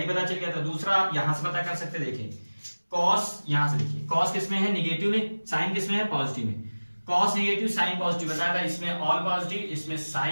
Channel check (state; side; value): inverted; both; correlation -1.00